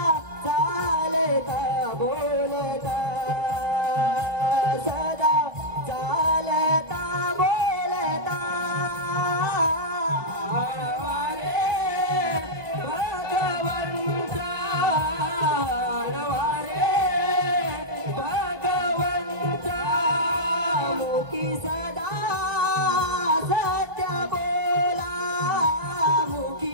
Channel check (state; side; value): late; left; 1.3 ms